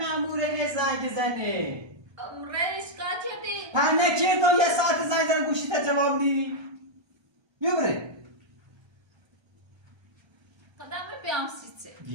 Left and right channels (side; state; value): left; late; 1.3 ms